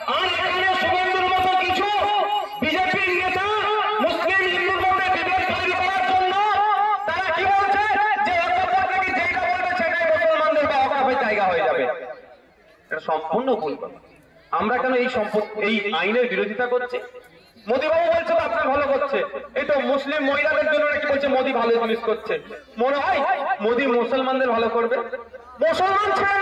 আর এখানে শুভেন্দুর মতো কিছু বিজেপির নেতা মুসলিম হিন্দুর মধ্যে বিভেদ তৈরি করার জন্য তারা কি বলছে যে যেটা বলবে সেটাই মুসলমানদের বা ওয়াকাফের জায়গা হয়ে যাবে। এটা সম্পূর্ণ ভুল কথা। আমরা কেন এই আইনের বিরোধিতা করছি? মোদীবাবু বলছে তো আপনার ভালো করছে, এই তো মুসলিম মহিলাদের জন্য নাকি বলছে মোদী ভালো জিনিস করছে। মনে হয় মোদী মুসলমানদের ভালো করবে? মুসলমান ছেড়ে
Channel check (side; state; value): both; identical; correlation 1.00